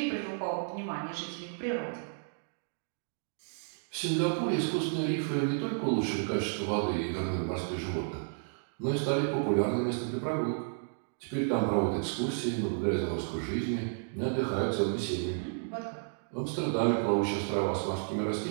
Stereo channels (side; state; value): left; silent; digital silence